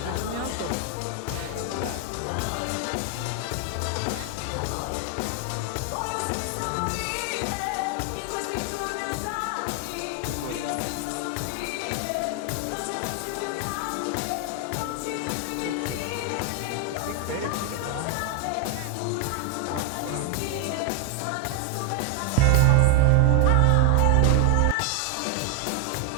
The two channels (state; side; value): different; both; correlation 0.00